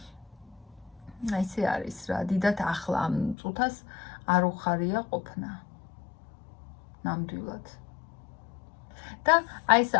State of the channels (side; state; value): right; drops out; at 3.4 s